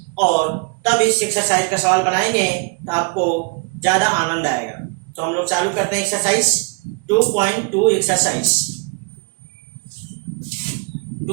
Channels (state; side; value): quieter; left; 34.1 dB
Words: और तब इस एक्सरसाइज का सवाल बनाएंगे तो आपको ज्यादा आनंद आएगा। तो हम लोग चालू करते हैं एक्सरसाइज 2.2 एक्सरसाइज।